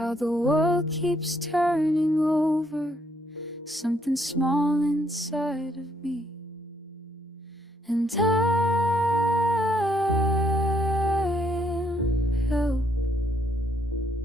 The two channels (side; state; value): both; normal; correlation 0.71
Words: the world keeps turning over something small inside of me. And I am held